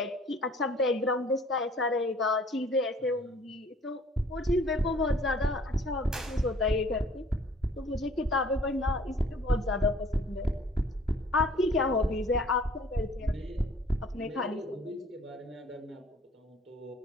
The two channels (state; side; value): normal; both; correlation 0.55